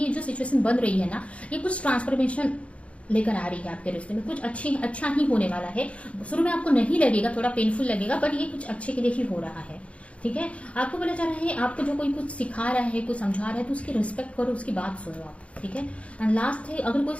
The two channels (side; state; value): right; late; 0.063 ms